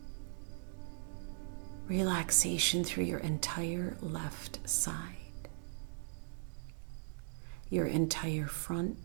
Relaxation through your entire left side. Your entire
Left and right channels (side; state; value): left; silent; digital silence